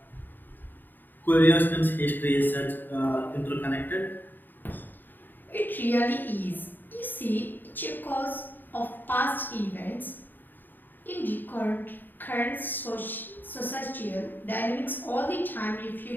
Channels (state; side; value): late; right; 0.091 ms